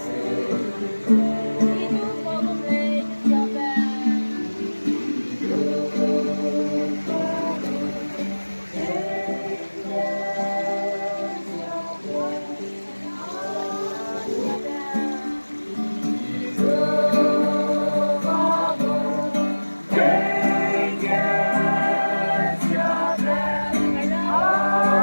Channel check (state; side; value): inverted; both; correlation -1.00